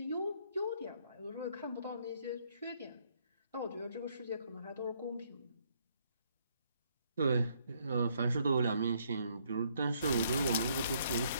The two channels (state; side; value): inverted; both; correlation -0.69